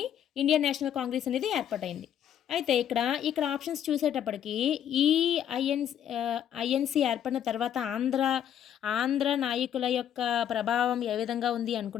ఇండియన్ నేషనల్ కాంగ్రెస్ అనేది ఏర్పాటైంది. అయితే ఇక్కడ ఆప్షన్స్ చూసేటప్పటికి ఈ ఐఎన్సి ఏర్పడిన తర్వాత ఆంధ్ర నాయకుల యొక్క ప్రభావం ఏ విధంగా ఉంది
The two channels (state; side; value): quieter; right; 9.9 dB